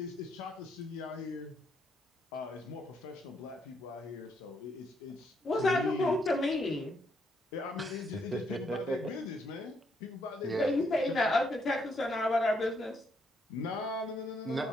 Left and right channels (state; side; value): normal; both; correlation 0.74